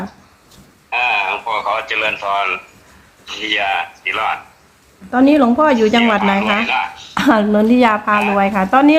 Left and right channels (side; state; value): both; identical; correlation 1.00